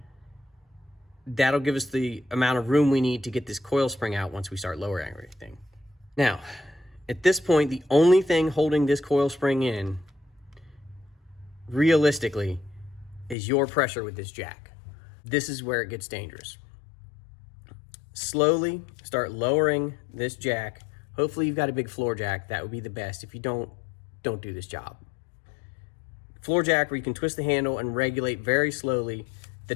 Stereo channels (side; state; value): right; drops out; at 13.4 s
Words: that'll give us the amount of room we need to get this coil spring out once we start lowering everything. Now, at this point, the only thing holding this coil spring in, realistically, is your pressure with this jack. This is where it gets dangerous. Slowly start lowering this jack. Hopefully you've got a big floor jack. That would be the best. If you don't do this job. Floor jack where you can twist the handle and regulate very slowly the